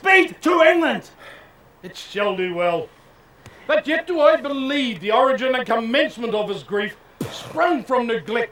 to England. It shall do well. But yet do I believe the origin and commencement of his grief sprung from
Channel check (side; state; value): both; identical; correlation 1.00